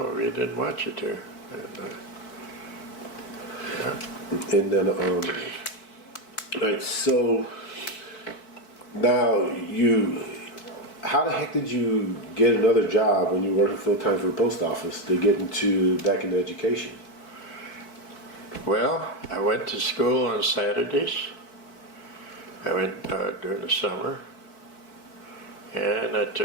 we didn't want you to. And then, all right, so now how the heck did you get another job when you were working full time for the post office to get back into education? Well, I went to school on Saturdays. I went during the summer, and I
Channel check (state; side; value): late; right; 4.6 ms